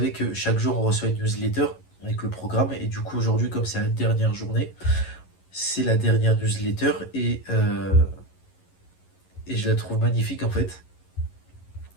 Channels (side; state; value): right; late; 11 ms